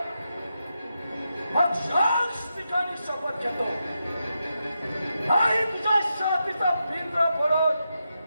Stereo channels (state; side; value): inverted; both; correlation -0.87